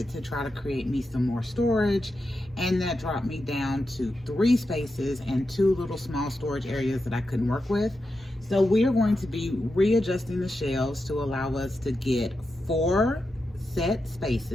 to try to create me some more storage, and that dropped me down to 3 spaces and 2 little small storage areas that I couldn't work with. So we are going to be readjusting the shelves to allow us to get 4 set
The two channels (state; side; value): normal; both; correlation 0.88